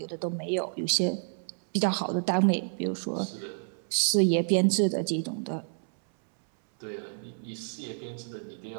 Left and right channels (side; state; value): left; silent; 58 dB below the other